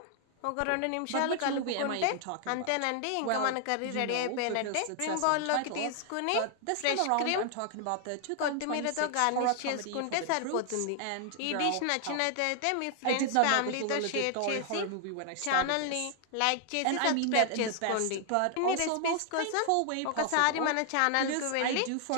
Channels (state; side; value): different; both; correlation 0.00